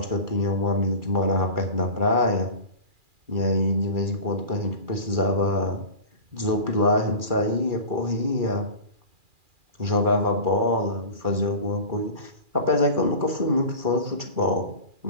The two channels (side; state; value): left; late; 2.4 ms